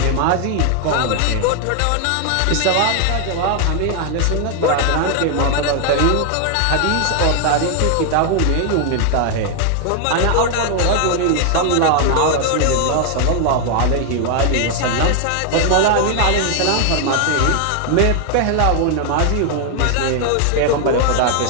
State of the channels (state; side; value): different; both; correlation 0.00